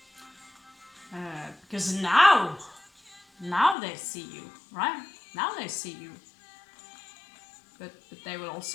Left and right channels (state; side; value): drops out; right; at 3.8 s